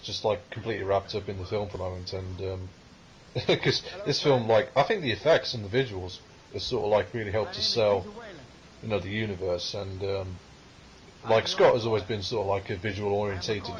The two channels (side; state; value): both; identical; correlation 1.00